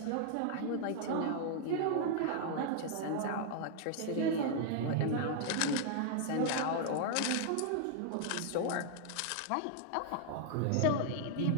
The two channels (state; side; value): different; both; correlation -0.01